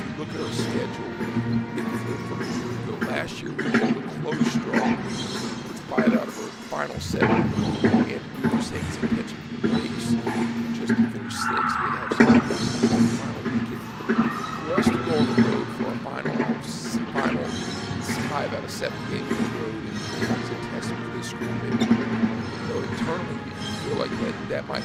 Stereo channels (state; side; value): identical; both; correlation 1.00